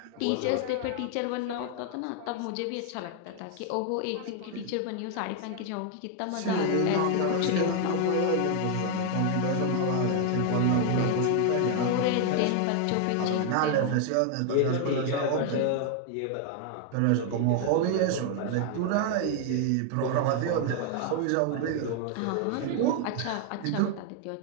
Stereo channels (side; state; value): both; different; correlation 0.00